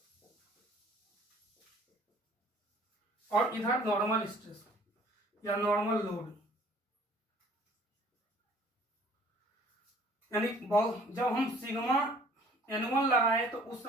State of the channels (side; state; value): both; normal; correlation 0.54